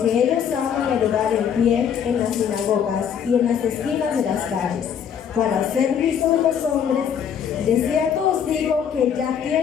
ellos aman el orar en pie en las sinagogas y en las esquinas de las calles, para ser vistos de los hombres. De cierto os digo que ya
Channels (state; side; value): quieter; right; 8.1 dB